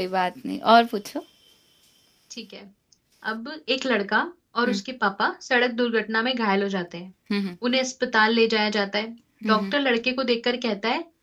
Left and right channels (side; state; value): both; identical; correlation 1.00